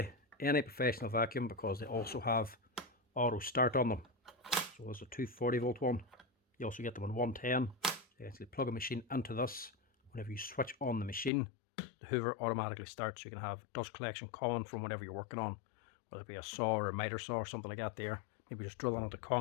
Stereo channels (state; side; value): drops out; right; at 11.3 s